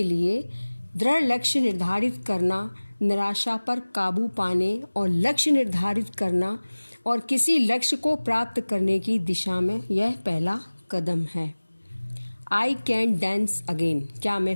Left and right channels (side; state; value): both; inverted; correlation -1.00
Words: लिए दृढ़ लक्ष्य निर्धारित करना, निराशा पर काबू पाने और लक्ष्य निर्धारित करना और किसी लक्ष्य को प्राप्त करने की दिशा में यह पहला कदम है. I can dance again. क्या मैं